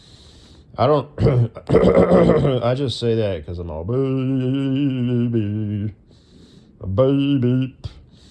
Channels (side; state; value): both; identical; correlation 1.00